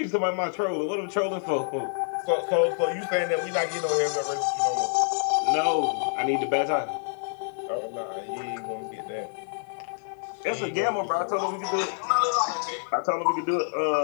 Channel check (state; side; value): silent; right; digital silence